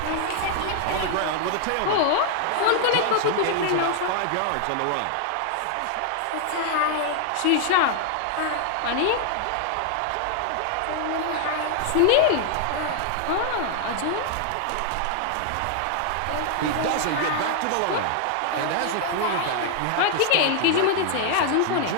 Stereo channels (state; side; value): different; both; correlation 0.00